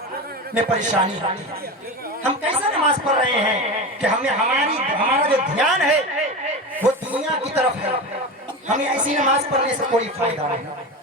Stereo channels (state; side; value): normal; both; correlation 0.24